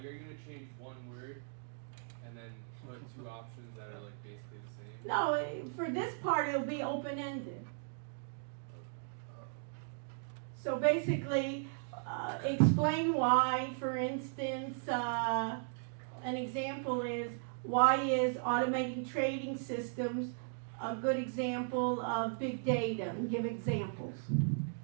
are you gonna change one word and then put two options that are like basically the same? No, for this part it'll be open-ended. So basically, explain why, for instance, an example is, why is automating trading systems a good example of big data? And give examples.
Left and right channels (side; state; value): left; silent; digital silence